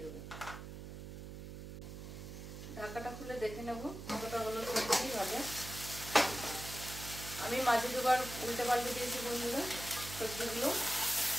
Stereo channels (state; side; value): noise; right; hum, 10 dB below the sound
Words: দেবো। ঢাকাটা খুলে দেখে নেব কতটা হলো সবজি ভাজা। আমি মাঝে দুবার উল্টে পাল্টে দিয়েছি বন্ধুরা সবজিগুলো।